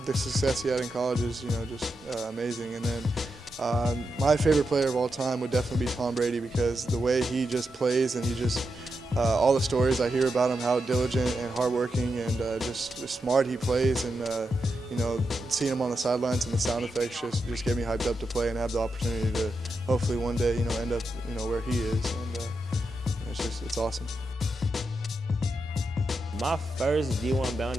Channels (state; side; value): normal; both; correlation 0.86